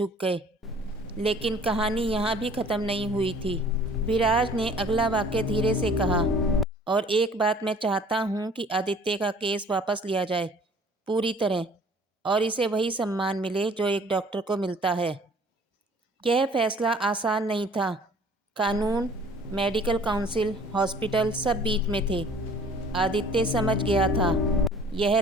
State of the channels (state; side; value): normal; both; correlation 0.52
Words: गए। लेकिन कहानी यहाँ भी ख़त्म नहीं हुई थी। विराज ने अगला वाक्य धीरे से कहा, और एक बात मैं चाहता हूँ कि आदित्य का केस वापस लिया जाए पूरी तरह, और इसे वही सम्मान मिले जो एक डॉक्टर को मिलता है। यह फैसला आसान नहीं था। कानून, मेडिकल काउंसिल, हॉस्पिटल सब बीच में थे। आदित्य समझ गया था, यह